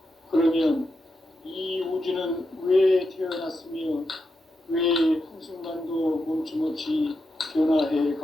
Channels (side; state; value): both; normal; correlation 0.86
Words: 그러면 이 우주는 왜 태어났으며 왜 한순간도 멈춤없이 변화해